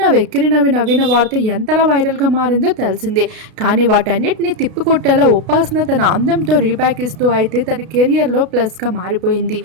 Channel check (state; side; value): late; left; 32 ms